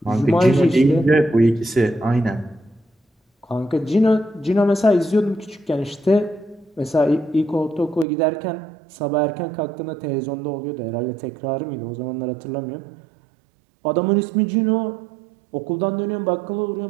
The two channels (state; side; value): drops out; left; at 8.1 s